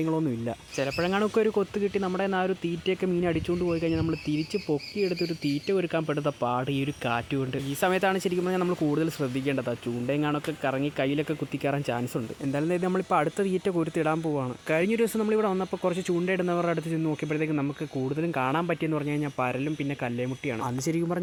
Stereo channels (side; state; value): both; identical; correlation 1.00